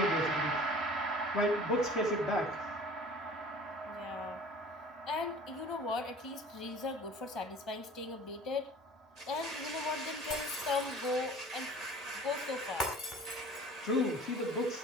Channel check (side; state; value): both; normal; correlation 0.45